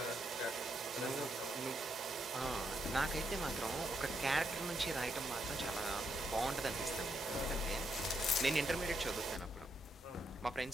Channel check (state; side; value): normal; both; correlation 0.79